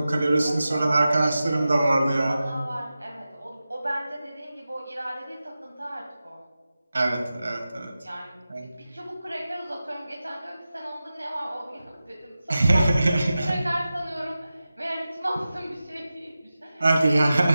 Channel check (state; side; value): inverted; both; correlation -0.94